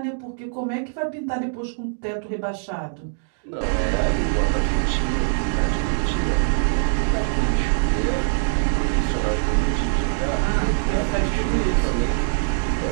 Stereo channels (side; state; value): left; silent; digital silence